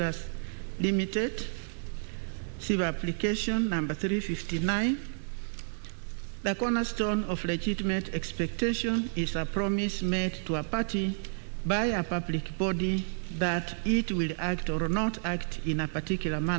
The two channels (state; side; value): silent; left; digital silence